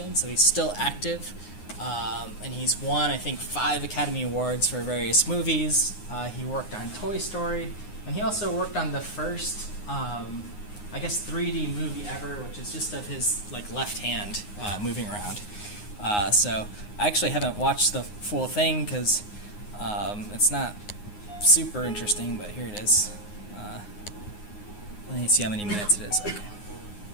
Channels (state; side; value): late; right; 9.6 ms